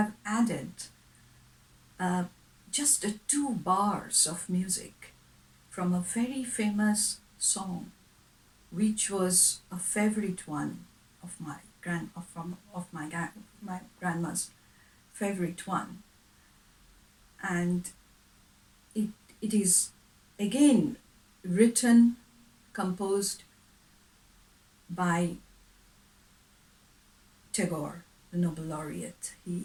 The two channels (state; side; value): identical; both; correlation 1.00